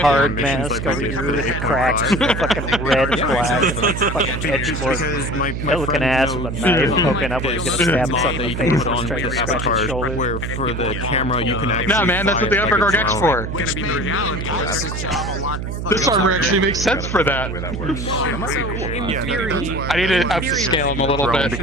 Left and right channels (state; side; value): noise; right; hum, 5 dB below the sound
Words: mask over here with the cracks, fucking red and black, fucking edge looking ass with a knife poking up where he's gonna stab himself in the face and try to scratch his shoulder. Where for the camera you can actually. Nah, man, that's what the upper guard X for? Gonna be the reality. This armor actually makes sense for that. In theory, I need to upscale him a little bit